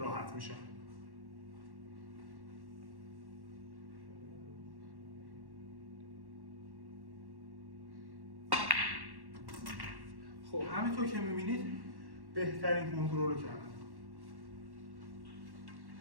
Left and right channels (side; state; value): left; late; 1.1 ms